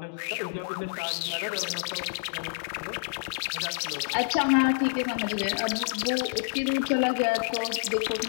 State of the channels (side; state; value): right; silent; digital silence